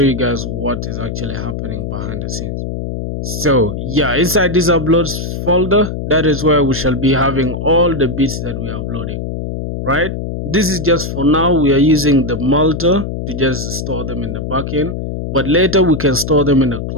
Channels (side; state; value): left; noise; hum, 5 dB below the sound